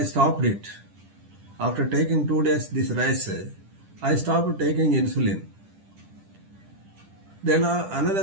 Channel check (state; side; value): late; left; 10 ms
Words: stopped it. After taking 2 days this rice, I stopped taking insulin. Then